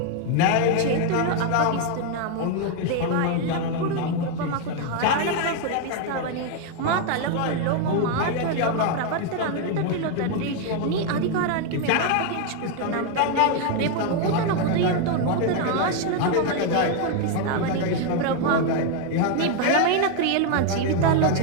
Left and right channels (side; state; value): both; different; correlation 0.01